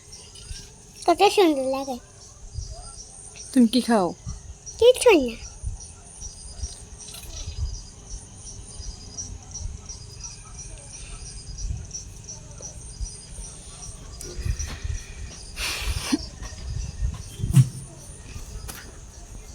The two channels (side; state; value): both; identical; correlation 1.00